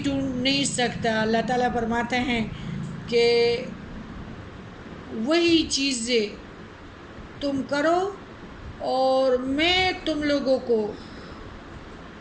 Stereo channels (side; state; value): both; identical; correlation 1.00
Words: ڈھونڈ نہیں سکتا. اللہ تعالیٰ فرماتے ہیں کہ وہی چیزیں تم کرو اور میں تم لوگوں کو